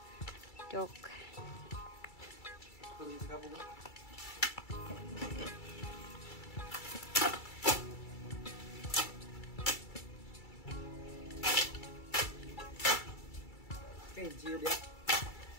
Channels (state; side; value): late; right; 2.3 ms